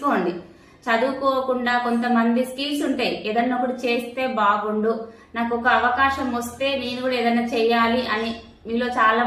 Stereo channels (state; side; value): identical; both; correlation 1.00